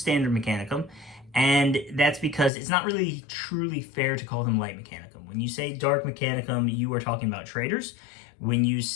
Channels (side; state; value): right; drops out; at 2.5 s